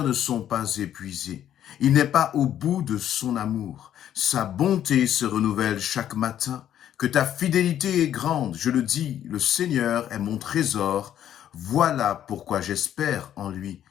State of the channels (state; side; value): quieter; right; 10.8 dB